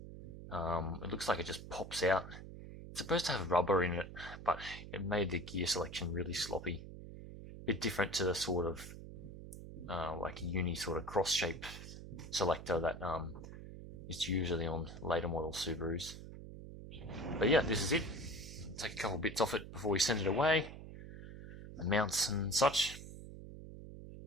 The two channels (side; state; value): right; noise; hum, 12 dB below the sound